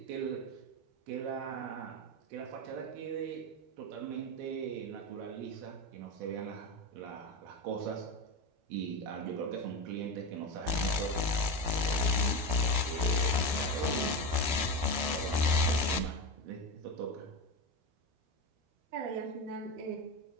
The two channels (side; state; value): left; late; 12 ms